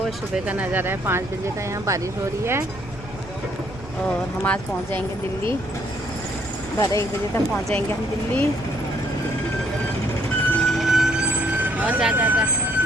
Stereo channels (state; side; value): noise; right; rumble, 16 dB below the sound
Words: सुबह का नज़ारा है, 5 बजे का। यहाँ बारिश हो रही है और हम आज पहुँच जाएंगे दिल्ली। 12-1 बजे तक पहुँच जाएंगे हम दिल्ली। और जा जा जा